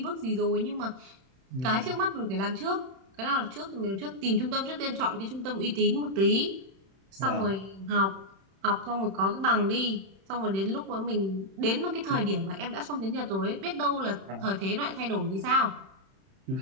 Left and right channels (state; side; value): late; left; 31 ms